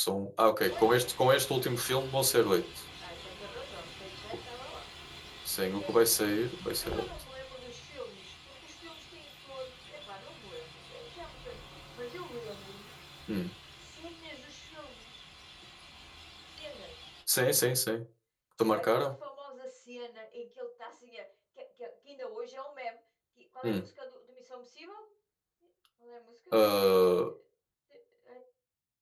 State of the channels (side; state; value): both; identical; correlation 1.00